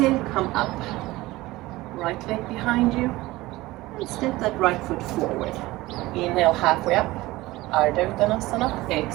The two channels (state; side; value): quieter; left; 19.0 dB